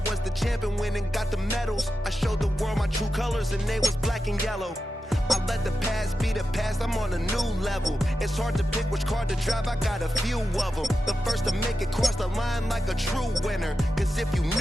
was the champion, went and got the medals. I showed the world my true colors and they was black and yellow. I let the past be the past, I'm on a new level. It's hard to pick which car to drive, I got a few of them. The first to make it cross the line like a true winner. Cause if you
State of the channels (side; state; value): both; normal; correlation 0.90